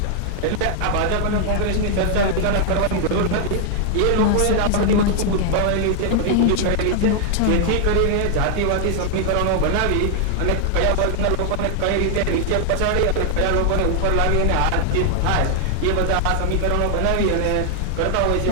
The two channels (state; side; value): different; both; correlation 0.00